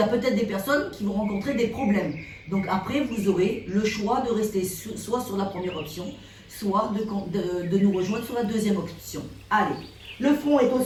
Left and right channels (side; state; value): both; identical; correlation 1.00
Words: peut-être des personnes qui vont rencontrer des problèmes. Donc après, vous aurez le choix de rester soit sur la première option, soit de nous rejoindre sur la deuxième option. Allez, le front est au